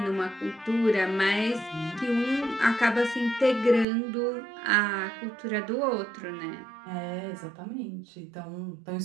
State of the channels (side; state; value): left; drops out; at 3.9 s